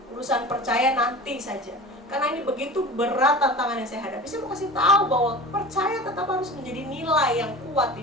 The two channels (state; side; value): normal; both; correlation 0.37